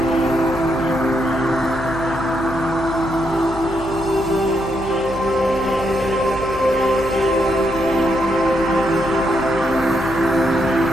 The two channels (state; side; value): noise; left; hum, 13 dB below the sound